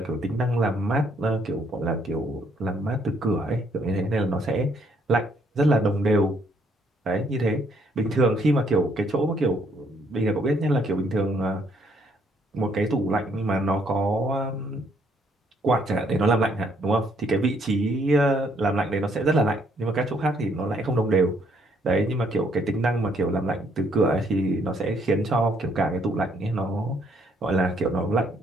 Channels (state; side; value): normal; both; correlation 0.68